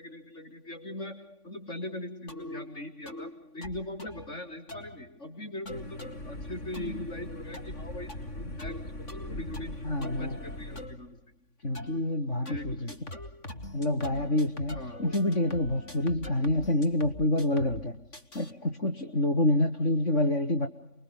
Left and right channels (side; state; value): right; late; 3.5 ms